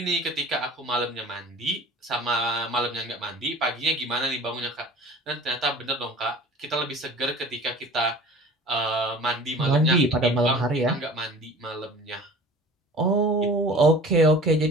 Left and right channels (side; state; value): both; normal; correlation 0.43